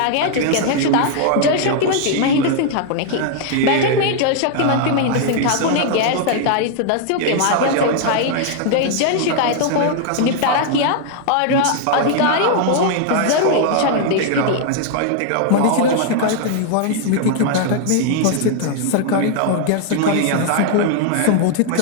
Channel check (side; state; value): both; different; correlation 0.00